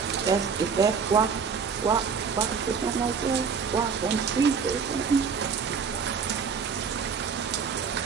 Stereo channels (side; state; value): left; quieter; 6.0 dB